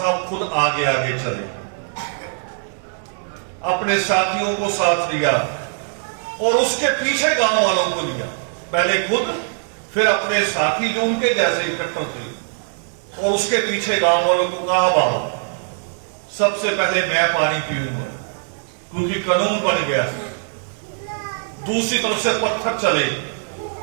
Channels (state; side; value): silent; left; 65 dB below the other